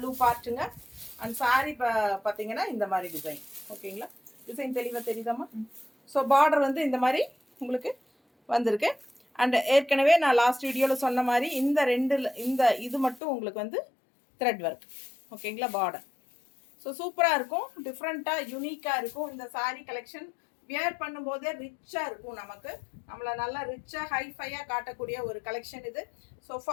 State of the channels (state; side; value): drops out; right; at 13.2 s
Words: பார்ட்டுங்க. அண்ட் சாரி பார்த்தீங்கன்னா இந்த மாதிரி டிசைன். ஓகேங்களா, டிசைன் தெளிவாக தெரியுதாம்மா? ஸோ பார்டர் வந்து இந்த மாதிரி உங்களுக்கு வந்திருக்கு. அண்ட் ஏற்கனவே நான் லாஸ்ட் வீடியோவில் சொன்ன மாதிரி இந்த இது மட்டும் உங்களுக்கு வந்து த்ரெட் ஒர்க். ஓகேங்களா, பார்டர். ஸோ சூப்பராக இருக்கும், டிஃப்ரெண்ட்டாக யூனிக்காக இருக்கும். இந்த சாரீ கலெக்ஷன் வியர் பண்ணும்போதே ரிச்சாக இருக்கும், நம்மளை நல்லா ரிச்சாக ஹைஃபையாக காட்டக்கூடிய ஒரு கலெக்ஷன் இது. ஸோ